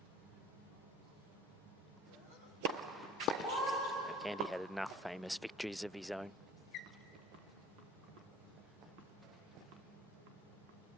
Andy had enough famous victories of his own.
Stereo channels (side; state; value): both; normal; correlation 0.49